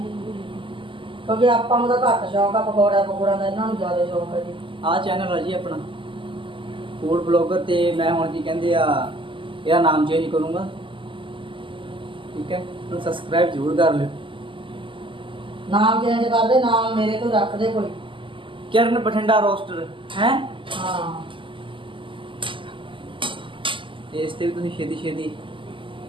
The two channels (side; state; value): left; late; 0.25 ms